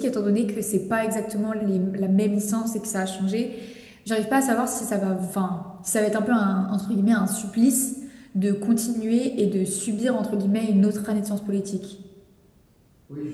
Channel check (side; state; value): both; identical; correlation 1.00